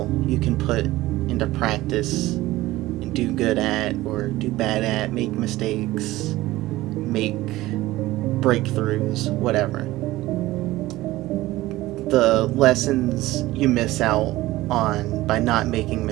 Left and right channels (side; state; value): left; quieter; 17.4 dB